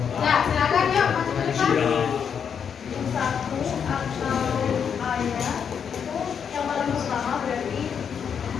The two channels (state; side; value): quieter; right; 7.3 dB